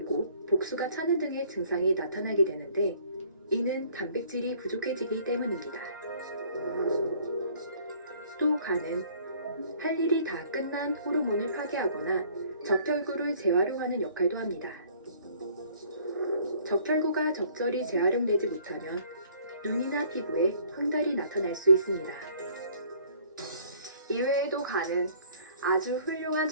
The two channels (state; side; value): inverted; both; correlation -0.57